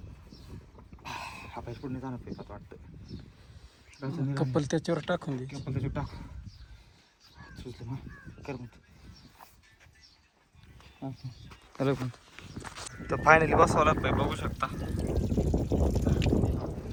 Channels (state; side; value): identical; both; correlation 1.00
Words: हा पाहिजे पुढे जाणं पाहिजे वाटतं कपल त्याच्यावर टाकून दे कपल त्याच्यावर टाक सुचलं मग कर मग हॅलो पण तर फायनली बसवला पाईप बघू शकता